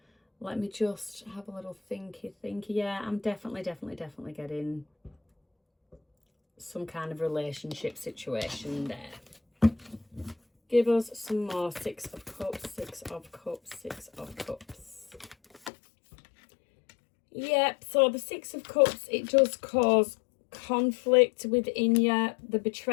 Let me just have a little thinky. Yeah, I'm definitely getting some kind of relationship situation there. Give us some more. 6 of Cups, 6 of Cups, 6 of Cups. Yep, so the 6 of Cups, it does cause conflict within you. The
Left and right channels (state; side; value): drops out; right; at 15.7 s